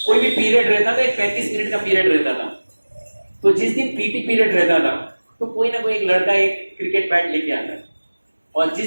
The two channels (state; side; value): inverted; both; correlation -1.00